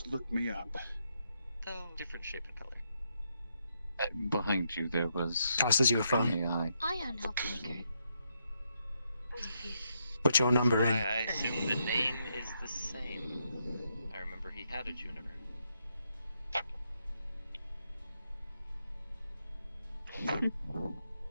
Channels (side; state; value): both; inverted; correlation -0.79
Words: look me up. Though different shape and color. Behind you there was Tosses you a an phone. AI. Ion Helpmaker. Put your number Why, in. I assume the name is the same. I remember he had a Juniper. At